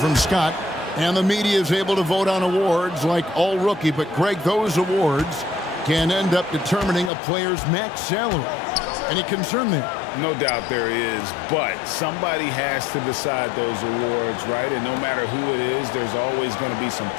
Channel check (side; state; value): right; drops out; at 7.1 s